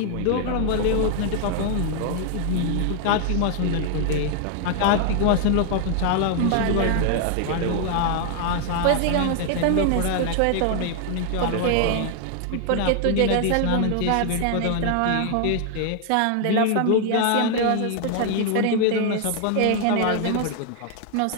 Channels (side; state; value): both; different; correlation 0.00